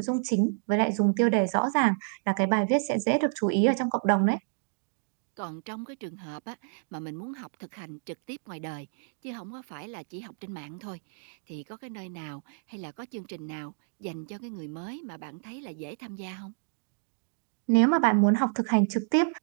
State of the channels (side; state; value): left; silent; digital silence